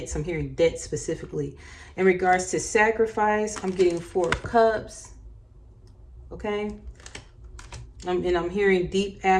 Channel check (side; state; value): both; identical; correlation 1.00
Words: I'm hearing debt specifically. In regards to sacrifice, I'm getting 4 of Cups. Okay. And I'm hearing deep